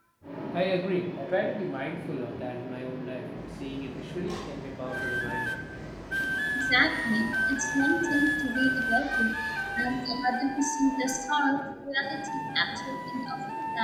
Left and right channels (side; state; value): both; identical; correlation 1.00